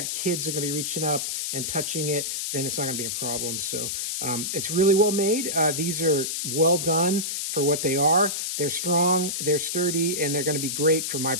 kids that are going to be reaching up and touching it, then it's not going to be a problem. So it's really well made. These are well done for what they are. They're strong, they're sturdy, and they're going to be great for my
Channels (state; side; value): noise; left; hiss, 2 dB below the sound